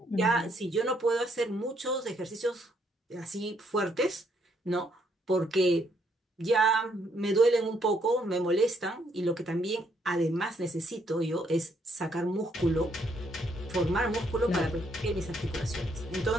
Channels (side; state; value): both; normal; correlation 0.71